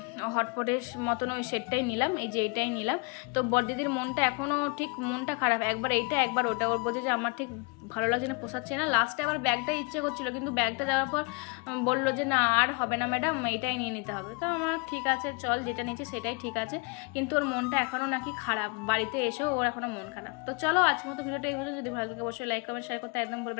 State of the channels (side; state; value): right; quieter; 30.5 dB